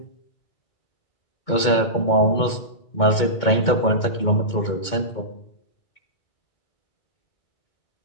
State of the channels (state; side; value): late; right; 2.2 ms